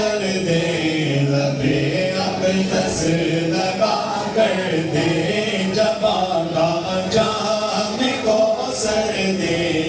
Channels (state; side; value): identical; both; correlation 1.00